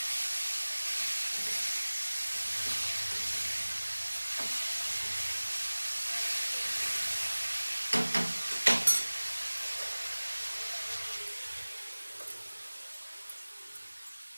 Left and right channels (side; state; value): both; inverted; correlation -1.00